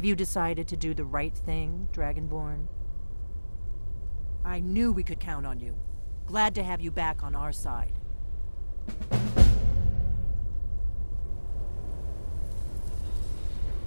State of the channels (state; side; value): inverted; both; correlation -1.00